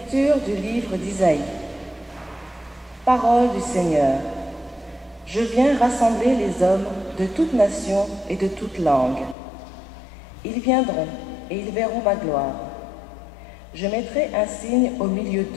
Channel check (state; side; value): drops out; right; at 9.3 s